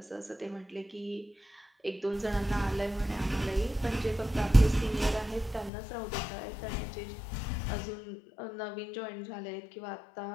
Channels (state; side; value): drops out; right; at 5.7 s